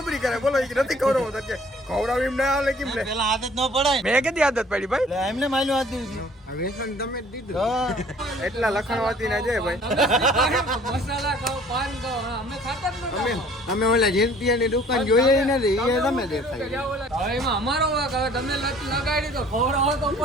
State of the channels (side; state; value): both; normal; correlation 0.54